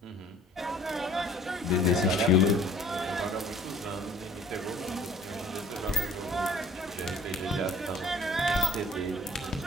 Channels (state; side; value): normal; both; correlation 0.52